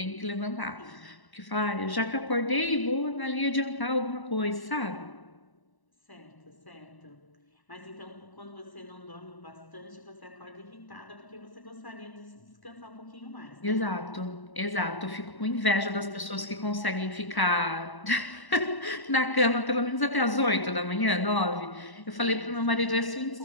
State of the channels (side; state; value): right; late; 1.1 ms